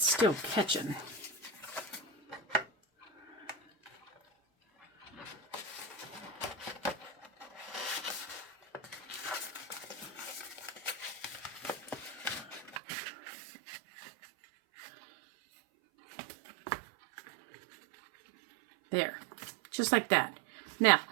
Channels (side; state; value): left; drops out; at 12.8 s